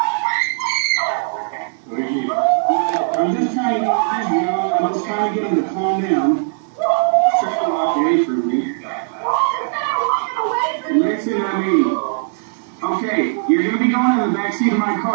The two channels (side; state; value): left; silent; digital silence